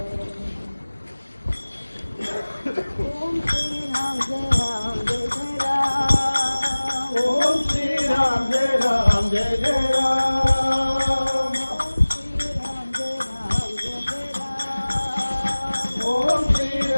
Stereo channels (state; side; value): inverted; both; correlation -1.00